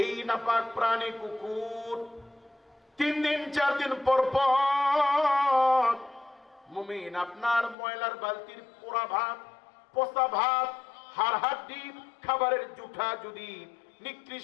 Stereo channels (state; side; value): drops out; right; at 7.8 s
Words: এই নাপাক প্রাণী কুকুর 3 দিন 4 দিন পর পর মুমিন আপনার ময়লার বালতির পোড়া ভাত, পচা ভাত, হাড় হাড্ডি, খাবারের জুঠা যদি